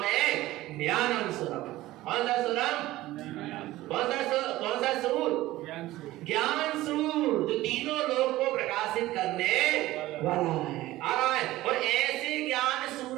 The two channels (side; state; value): left; quieter; 16.8 dB